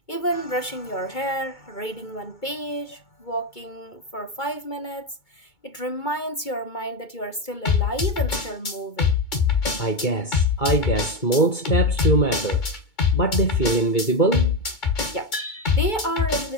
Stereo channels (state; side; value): late; right; 2.2 ms